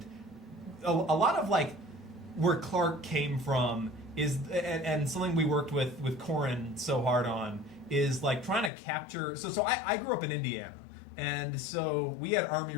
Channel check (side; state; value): right; drops out; at 8.7 s